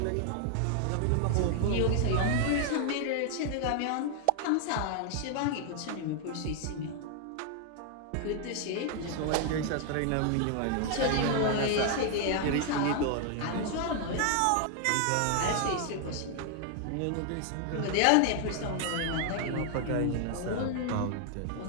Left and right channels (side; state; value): both; different; correlation 0.00